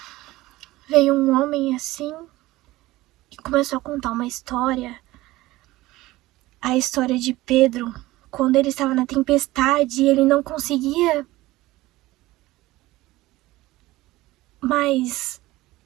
veio um homem assim e começou a contar uma história. A história de Pedro, quando ele estava na tempestade, ele não conseguia mais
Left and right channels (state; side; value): quieter; left; 18.1 dB